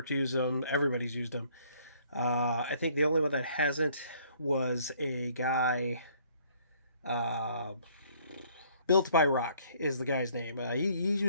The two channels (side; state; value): both; inverted; correlation -0.61